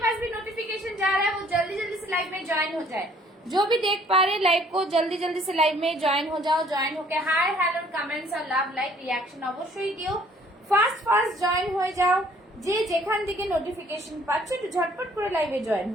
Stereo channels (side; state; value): both; normal; correlation 0.59